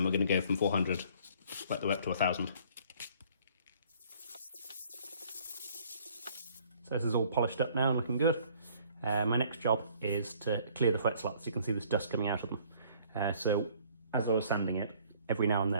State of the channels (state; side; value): inverted; both; correlation -0.58